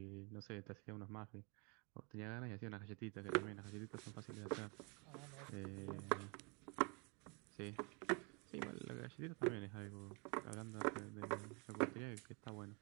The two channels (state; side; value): quieter; left; 32.4 dB